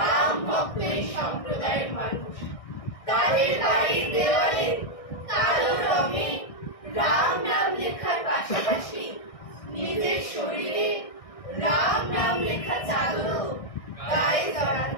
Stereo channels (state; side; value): late; right; 1.6 ms